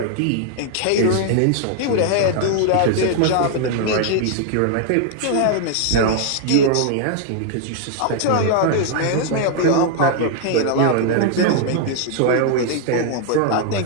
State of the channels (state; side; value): different; both; correlation 0.00